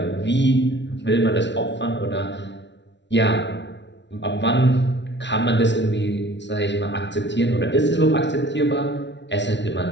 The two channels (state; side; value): late; right; 0.51 ms